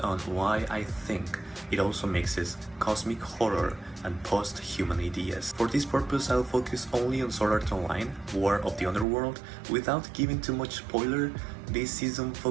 on why I think it also mixes cosmic horror and post-human ideas. For this purpose, I'll focus only on Sword Art Online, War of the Underworld. Without giving too much spoiler, this season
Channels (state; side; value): drops out; left; at 9.1 s